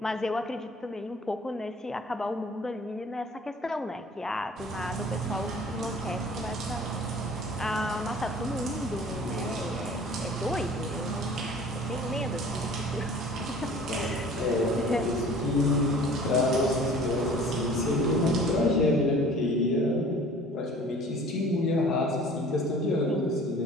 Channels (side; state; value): both; normal; correlation 0.48